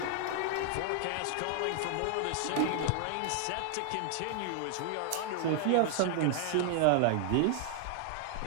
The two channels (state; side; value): different; both; correlation 0.00